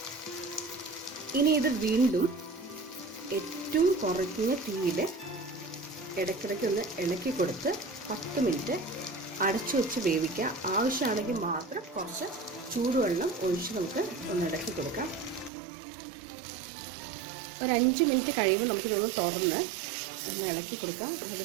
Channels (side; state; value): left; drops out; at 15.5 s